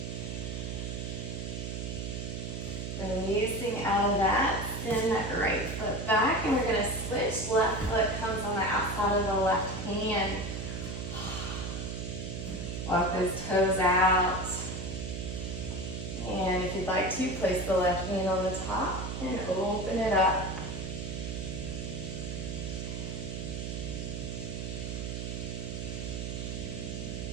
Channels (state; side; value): noise; right; hum, 5 dB below the sound